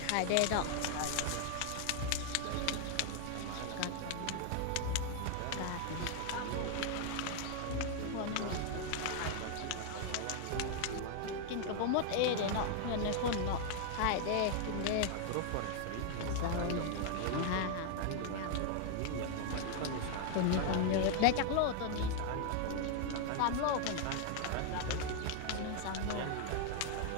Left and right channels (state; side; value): different; both; correlation 0.00